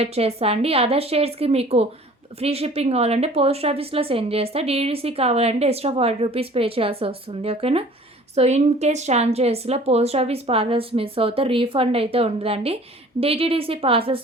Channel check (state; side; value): normal; both; correlation 0.49